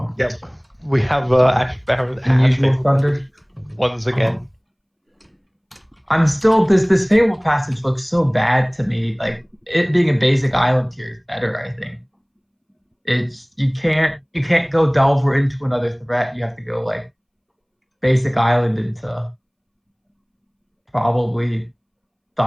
Yep, we have Ash Baron and UnusualThunder once again. I'm still this Fable Passage looks so bad to me. Like it being a basic island tier is better, I think. It's you can't go Delver into another threat. You have to go like basic island into probably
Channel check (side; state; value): both; identical; correlation 1.00